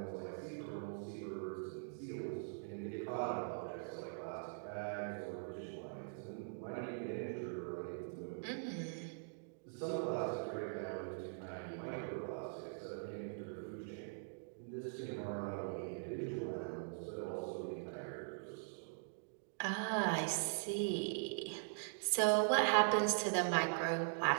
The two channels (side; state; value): left; silent; digital silence